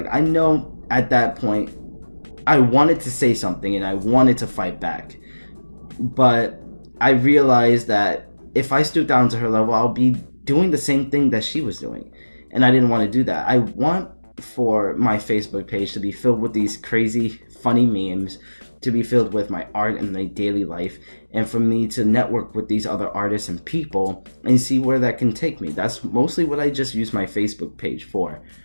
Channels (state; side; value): inverted; both; correlation -1.00